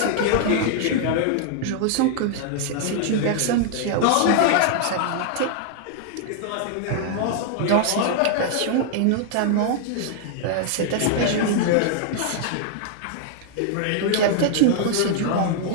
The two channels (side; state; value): both; different; correlation 0.00